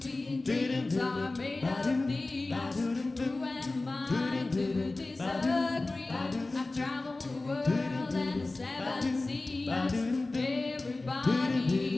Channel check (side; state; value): right; quieter; 3.1 dB